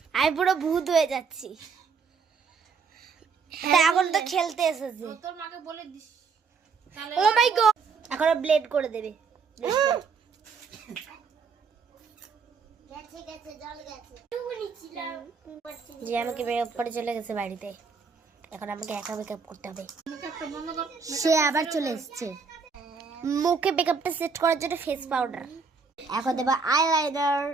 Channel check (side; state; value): left; quieter; 5.3 dB